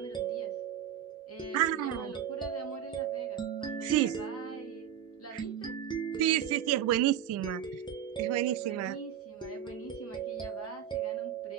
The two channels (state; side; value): quieter; left; 9.6 dB